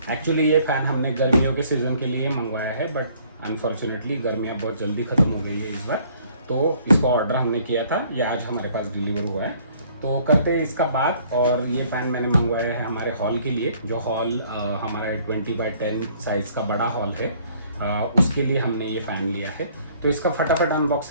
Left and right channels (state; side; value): inverted; both; correlation -0.60